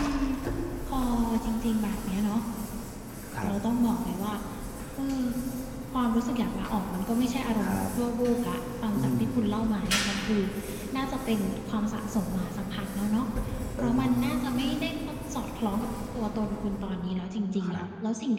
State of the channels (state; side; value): identical; both; correlation 1.00